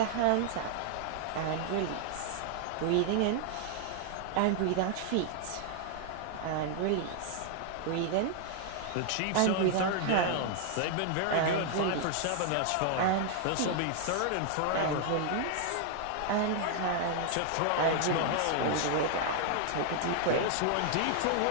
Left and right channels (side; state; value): both; different; correlation 0.00